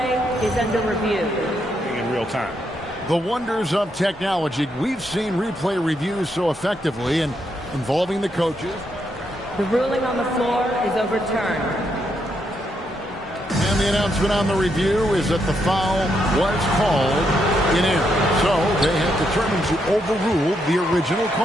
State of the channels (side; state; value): both; normal; correlation 0.79